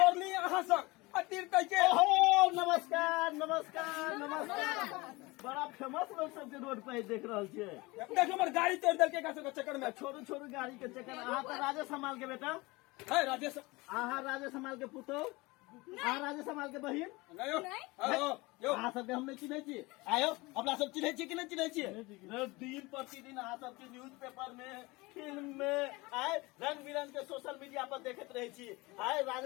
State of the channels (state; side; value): quieter; right; 23.1 dB